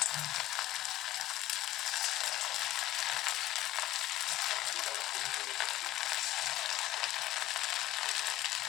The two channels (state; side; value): quieter; right; 15.3 dB